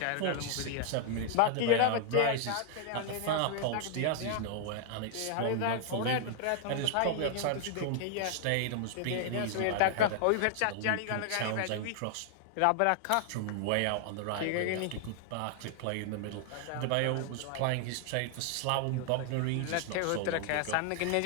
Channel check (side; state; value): both; different; correlation 0.00